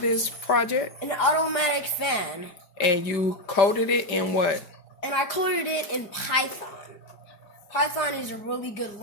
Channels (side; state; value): right; late; 4.9 ms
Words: this project? An automatic fan. And you coded it in what? And I coded it in Python. Python is a really good